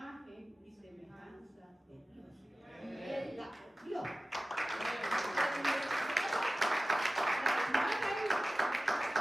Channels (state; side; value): normal; both; correlation 0.96